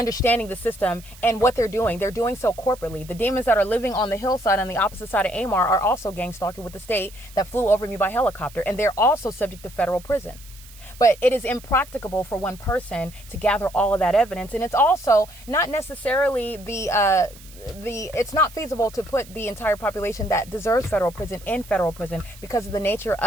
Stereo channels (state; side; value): noise; right; hiss, 21 dB below the sound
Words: the system and what they're doing. They're doing so corporately. The demons that are living on the hillside on the opposite side of AMAR are also gang stalking with the state that flew over me by helicopter. And they're also subject to federal prison. But it is impracticable for one person to gather all of that evidence. And it's also not necessarily it's not feasible to put the entire population that deserves federal prison in federal prison because of the nature